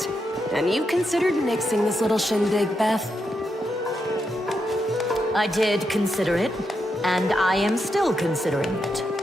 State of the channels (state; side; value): normal; both; correlation 0.83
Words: And you considered nixing this little shindig, Beth? I did consider it, and I am still considering it.